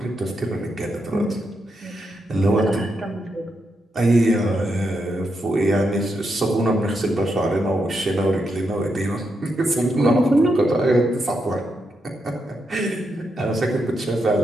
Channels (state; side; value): normal; both; correlation 0.83